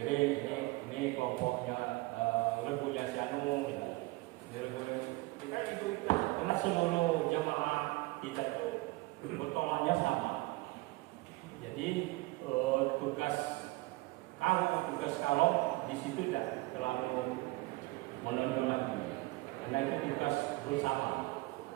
ini kelompoknya rebunya si Anu, kita itu karena seluruh jemaah kita itu bertolaknya sama. Jadi tugas kalong di situ tidak terlalu menonjol lagi, karena itu tugas bersama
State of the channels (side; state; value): left; quieter; 22.1 dB